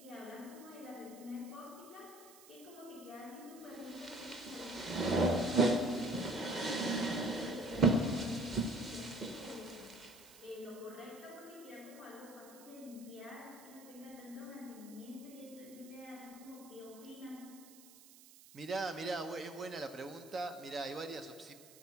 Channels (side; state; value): right; noise; hiss, 20 dB below the sound